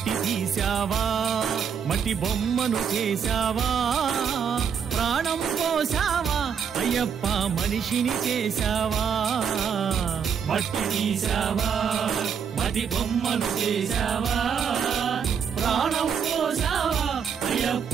తీసావా మట్టి బొమ్మను చేసావా ప్రాణం పోసావా అయ్యప్ప మనిషిని చేసావా మట్టి తీసావా మట్టి బొమ్మను చేసావా ప్రాణం పోసావా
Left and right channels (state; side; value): quieter; left; 7.2 dB